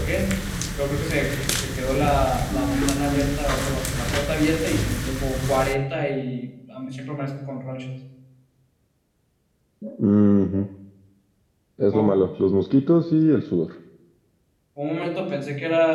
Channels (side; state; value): both; identical; correlation 1.00